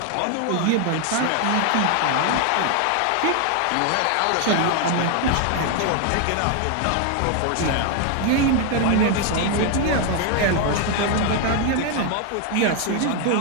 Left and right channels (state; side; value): different; both; correlation 0.01